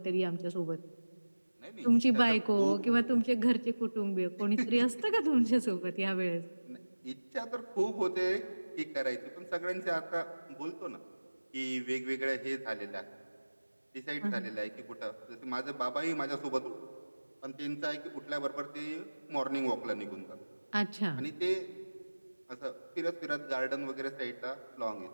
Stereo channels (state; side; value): inverted; both; correlation -1.00